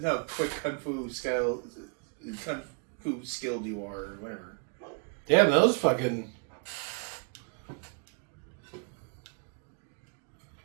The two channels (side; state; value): left; quieter; 39.6 dB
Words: how quick kung fu skilled you are, or whatever. Damn, those fucking...